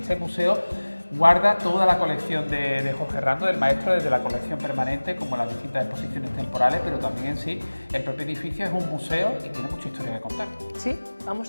museo guarda toda la colección de Jorge Herrando, del maestro, desde la colección permanente como las distintas exposiciones temporales, pero también en sí el propio edificio es un museo y tiene mucha historia que contar. Sí,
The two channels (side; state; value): both; inverted; correlation -1.00